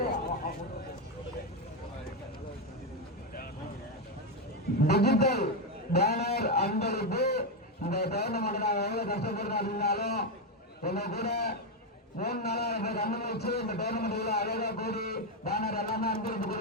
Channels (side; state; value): both; normal; correlation 0.06